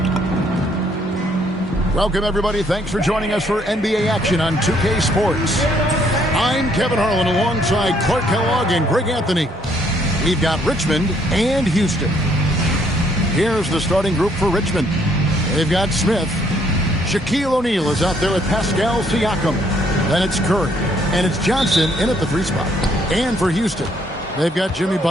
Welcome, everybody. Thanks for joining us for NBA action on 2K Sports. I'm Kevin Harlan alongside Clark Kellogg and Greg Anthony. We've got Richmond and Houston. Here's the starting group for Richmond. They've got Smith. Shaquille O'Neal is out there with Pascal Siakam. Then it's Curry. And it's Johnson in at the 3 spot. And for Houston, they've got Jimmy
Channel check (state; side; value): normal; both; correlation 0.67